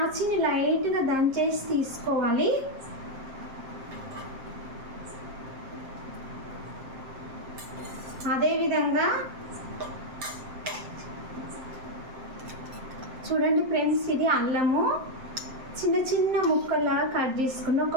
లైట్గా దంచేసి తీసుకోవాలి. అదేవిధంగా చూడండి ఫ్రెండ్స్, ఇది అల్లము చిన్న చిన్న ముక్కలా కట్ చేసుకుని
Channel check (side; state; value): left; late; 7.6 ms